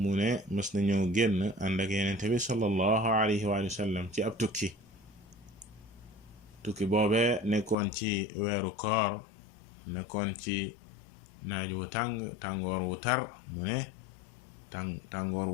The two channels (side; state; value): right; drops out; at 7.8 s